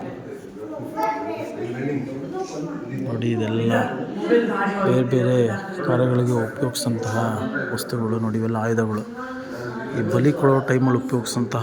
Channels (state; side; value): identical; both; correlation 1.00